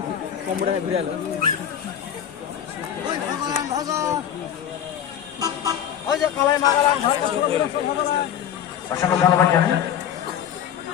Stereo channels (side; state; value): right; quieter; 9.6 dB